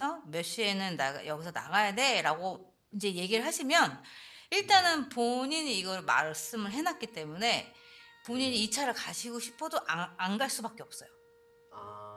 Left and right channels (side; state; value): both; identical; correlation 1.00